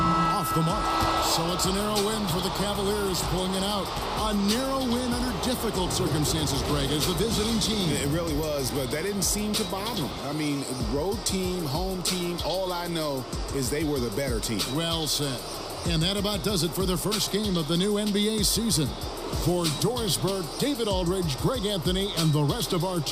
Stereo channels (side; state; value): both; identical; correlation 1.00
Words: the mark. So it's a narrow win for the Cavaliers, pulling it out. A narrow win under difficult circumstances, Greg, as the visiting team. It really was, but that didn't seem to bother them. I mean, road team, home team, all I know is they were the better team. Well said. And that about does it for the first game of the new NBA season. For Dorisberg, David Aldridge, Greg Anthony, and the rest of our